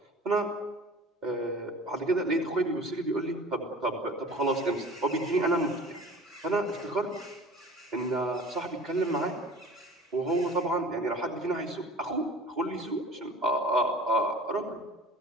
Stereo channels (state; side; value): normal; both; correlation 0.42